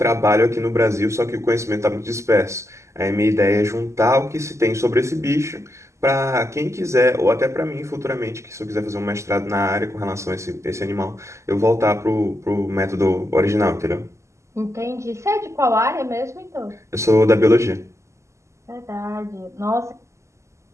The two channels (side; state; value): left; late; 0.14 ms